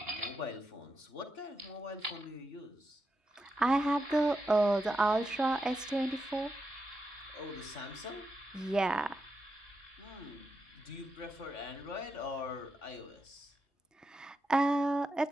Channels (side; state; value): both; normal; correlation 0.86